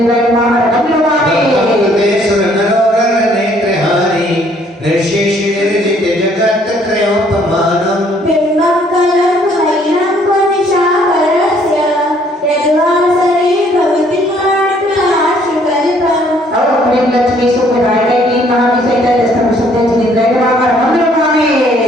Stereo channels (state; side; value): normal; both; correlation 0.63